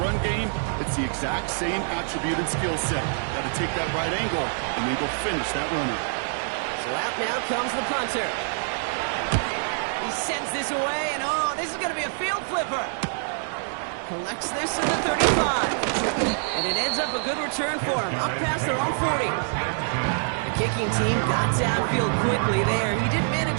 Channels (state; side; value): silent; left; digital silence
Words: game, it's the exact same attribute and skill set. Got to take that right angle and then go finish that runner. So out now comes the punter. He sends this away, and oh, this is going to be a field flipper. Collects this at the 35. And it ends up a good return for him, up past their own 40. The kicking team got downfield quickly there. He didn't